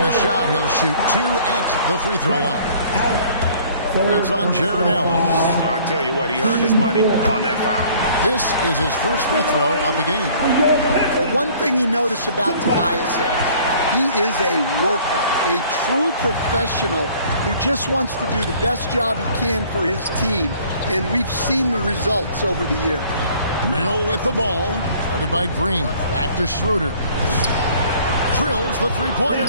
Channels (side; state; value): both; inverted; correlation -0.54